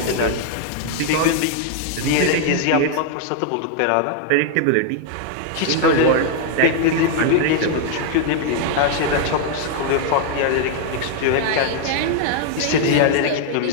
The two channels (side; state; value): both; different; correlation 0.00